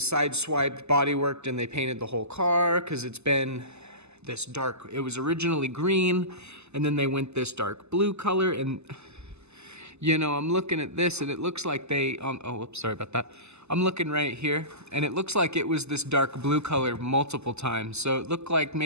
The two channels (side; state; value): left; late; 0.80 ms